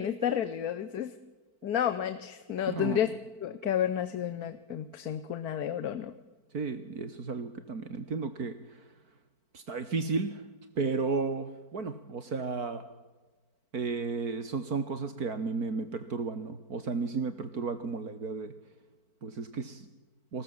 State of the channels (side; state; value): left; late; 4.5 ms